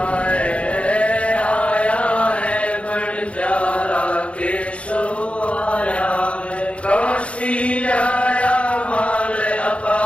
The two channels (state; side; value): late; right; 0.061 ms